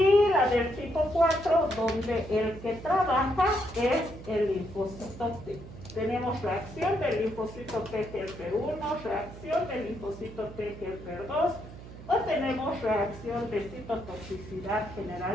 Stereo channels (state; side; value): noise; right; hum, 15 dB below the sound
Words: la del tipo 4, donde el que trabaja es el linfocito T. Tenemos reacción del linfocito T helper 1, reacción del linfocito T helper 2, o tenemos reacción de citotoxicidad